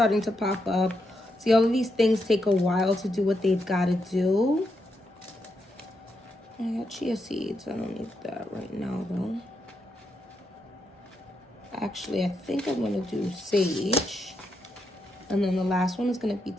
to pop up. See, all of these things take a while to do what they've got to do. I got chia seeds. I don't need that right now, though. Actually, I think I'm going to do sage. And then the last one is going to be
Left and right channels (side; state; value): both; normal; correlation 0.82